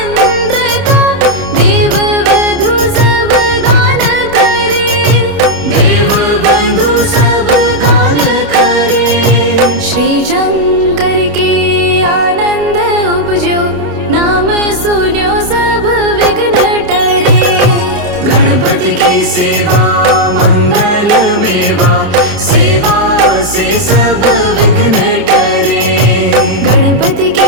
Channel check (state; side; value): late; left; 29 ms